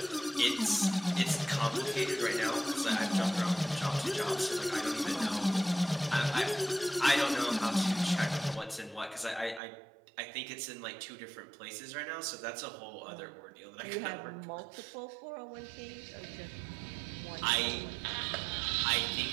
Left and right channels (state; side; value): drops out; left; at 9.6 s